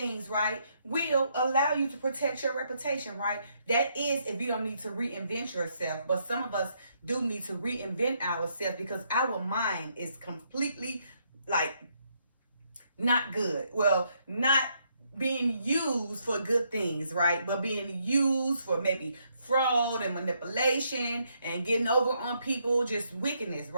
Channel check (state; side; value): inverted; both; correlation -0.74